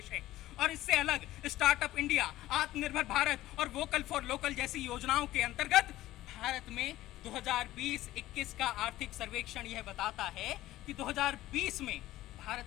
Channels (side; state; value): right; quieter; 15.5 dB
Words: है और इससे अलग स्टार्टअप इंडिया, आत्मनिर्भर भारत और वोकल फॉर लोकल जैसी योजनाओं के अंतर्गत भारत में 2020-21 का आर्थिक सर्वेक्षण यह बताता है कि 2020 में भारत